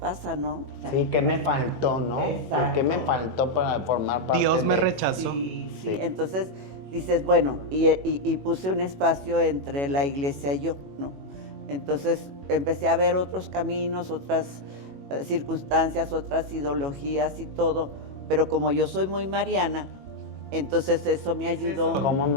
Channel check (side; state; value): left; late; 21 ms